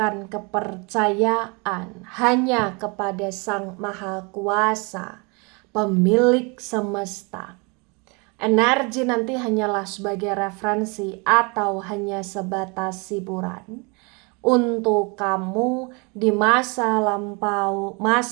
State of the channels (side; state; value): left; quieter; 30.8 dB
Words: kepercayaan hanya kepada Sang Maha Kuasa, pemilik semesta. Energi nanti hanyalah sebagai referensi atau hanya sebatas hiburan untuk kamu di masa lampau,